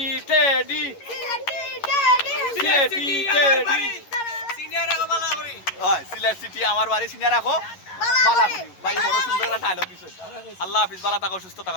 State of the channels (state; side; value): late; right; 11 ms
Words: টেডি সিনিয়র রাখো ভালো করে হয় সিলেট সিটি আমার বাড়ি সিনিয়র রাখো ভালো করি ভাই বড় সুন্দর একটা ডায়লগ দিছে আল্লাহ হাফেজ ভালো থাকো সুস্থ